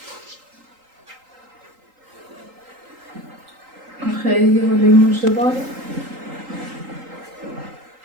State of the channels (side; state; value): left; late; 3.8 ms